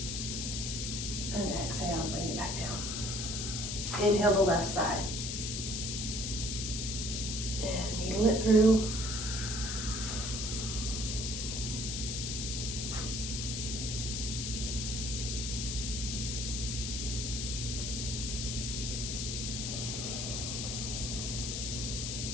and exhale, bring it back down. Inhale the left side. And needle it through.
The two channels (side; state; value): left; noise; hiss, 2 dB below the sound